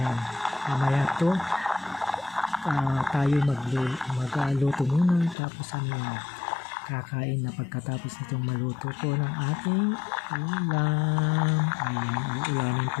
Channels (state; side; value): drops out; right; at 5.4 s